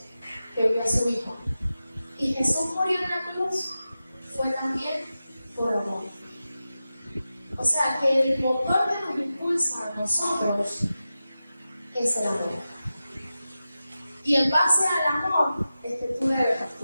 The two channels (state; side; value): inverted; both; correlation -0.93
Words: que envió a su Hijo. Y Jesús murió en la cruz fue también por amor. O sea que el motor que nos impulsa a nosotros es el amor. Y en base al amor es que tú debes